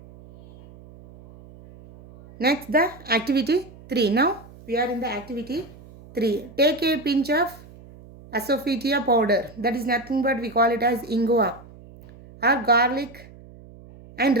Next the activity 3. Now we are in the activity 3. Take a pinch of asafoetida powder, that is nothing but we call it as ingua or garlic, and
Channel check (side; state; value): right; noise; hum, 21 dB below the sound